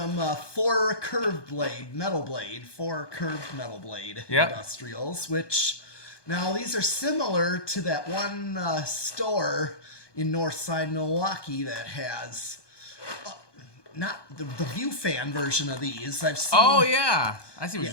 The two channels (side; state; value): right; late; 1.2 ms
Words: four curved metal blade industrials, which now these are similar to that one store in Northside Milwaukee that has not the view fan version of these. I've seen. Oh yeah, I see what you're